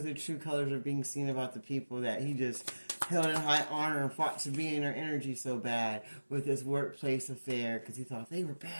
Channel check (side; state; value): both; inverted; correlation -1.00